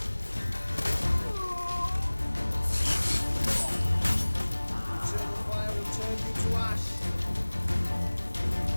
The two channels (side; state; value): both; inverted; correlation -1.00